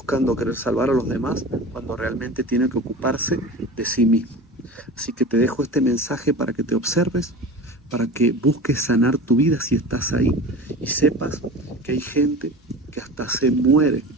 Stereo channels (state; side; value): normal; both; correlation 0.34